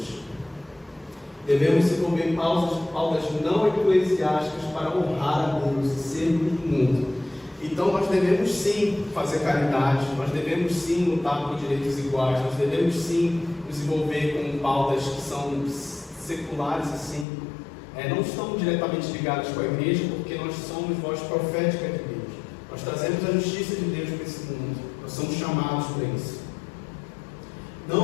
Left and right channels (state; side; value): drops out; right; at 17.2 s